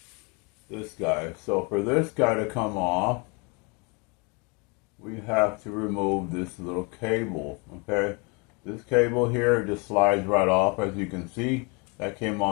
this guy. So for this guy to come off, we have to remove this little cable, okay? This cable here just slides right off, as you can see. That came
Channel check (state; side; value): quieter; right; 31.1 dB